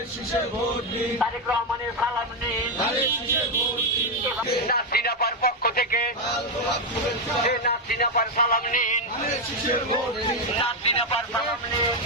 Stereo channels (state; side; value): normal; both; correlation 0.04